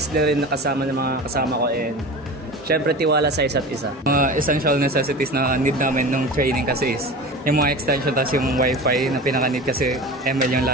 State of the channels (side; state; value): both; normal; correlation 0.33